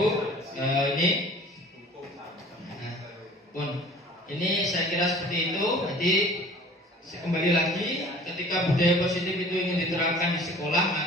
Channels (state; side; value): normal; both; correlation 0.47